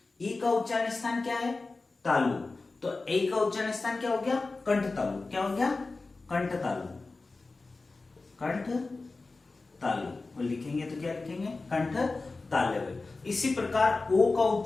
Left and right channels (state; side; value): quieter; right; 3.6 dB